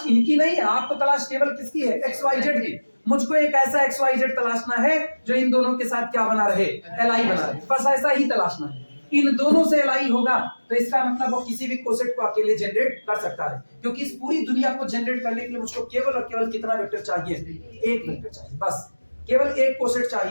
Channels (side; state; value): both; inverted; correlation -1.00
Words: इनकी नहीं है, आपको तलाश केवल किसकी है, XYZ की। मुझको एक ऐसा XYZ तलाशना है जो इन दोनों के साथ क्या बना रहे, Li बना रहे, बस ऐसा ही तलाशना है। इन दोनों से Li होगा तो इसका मतलब वो किसी भी कोसेट को अकेले जनरेट कर सकता है, क्योंकि इस पूरी दुनिया को जनरेट करने के लिए मुझको केवल और केवल कितना वेक्टर चाहिए, एक वेक्टर चाहिए, बस केवल एक कोसेट